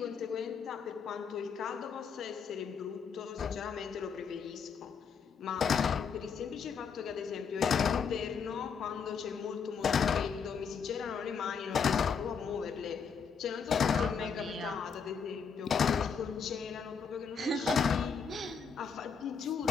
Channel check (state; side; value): quieter; right; 6.2 dB